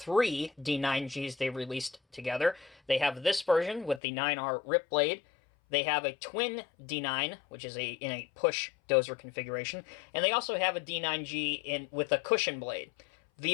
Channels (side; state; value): right; drops out; at 4.0 s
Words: D9Gs they released together. They have this version with the 9R rip blade. They have a twin D9, which is in a push dozer configuration, and they also have a D9G with a cushion blade.